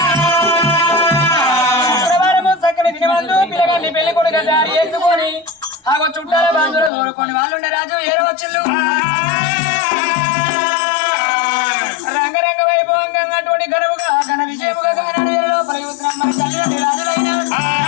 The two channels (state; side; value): drops out; right; at 6.9 s